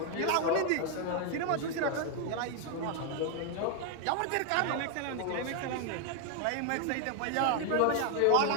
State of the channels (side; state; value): both; different; correlation 0.01